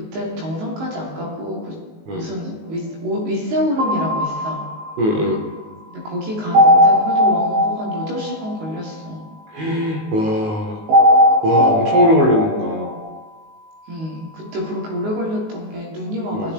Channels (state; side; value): late; left; 19 ms